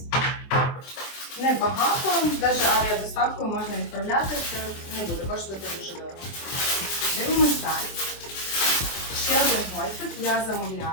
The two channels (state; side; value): late; right; 24 ms